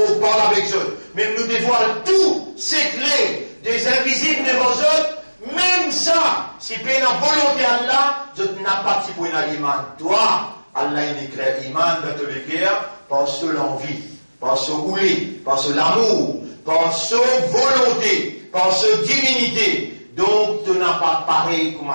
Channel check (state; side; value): inverted; both; correlation -1.00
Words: parle avec eux, même nous dévoilons tous ces clés des invisibles devant eux, même ça, si tu as la volonté d'Allah, je n'ai pas de pour l'iman. Toi, Allah il éclaire l'iman dans tous les guerres, par ce l'envie, par ce ouli, par ce l'amour, par ce volonté, par ce divinité, donc tu n'as pas pareil comme